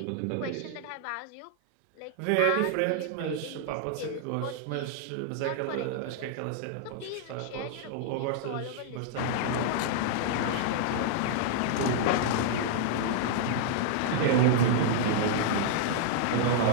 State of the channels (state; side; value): different; both; correlation -0.01